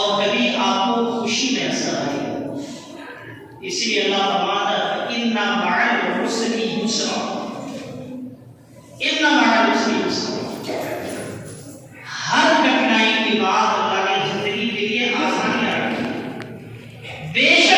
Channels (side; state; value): both; identical; correlation 1.00